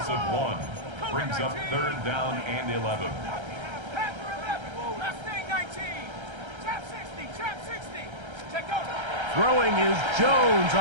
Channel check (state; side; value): late; left; 1.3 ms